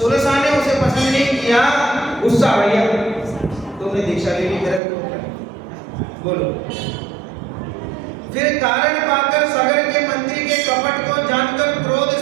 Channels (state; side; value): drops out; left; at 4.8 s